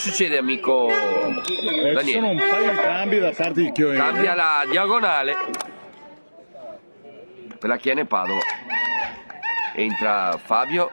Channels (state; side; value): inverted; both; correlation -1.00